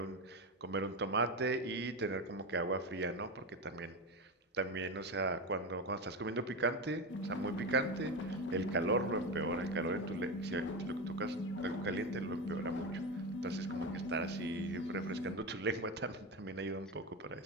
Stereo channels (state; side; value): normal; both; correlation 0.17